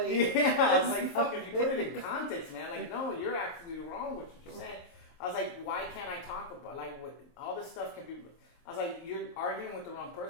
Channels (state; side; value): late; right; 23 ms